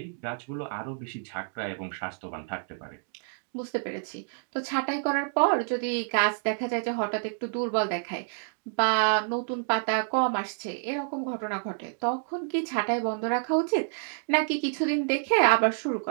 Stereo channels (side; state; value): left; silent; digital silence